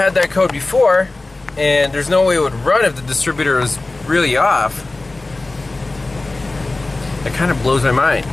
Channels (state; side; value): quieter; right; 3.1 dB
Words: that code before, and there's no way it would run if the distributor was really off. That kind of blows my mind.